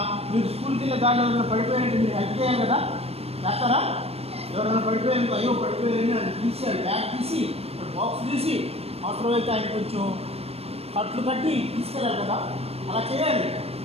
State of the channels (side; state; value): left; late; 0.29 ms